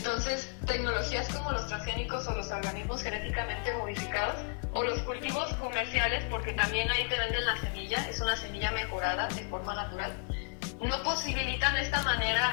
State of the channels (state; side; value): quieter; right; 39.7 dB